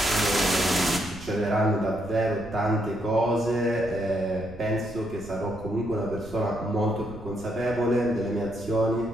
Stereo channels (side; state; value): right; noise; rumble, 17 dB below the sound